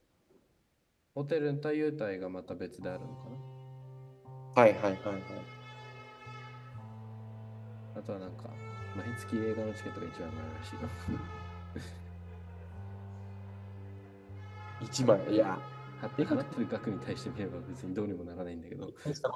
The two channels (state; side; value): identical; both; correlation 1.00